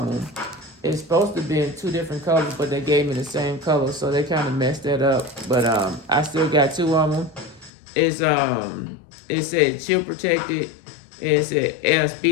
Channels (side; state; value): right; drops out; at 7.7 s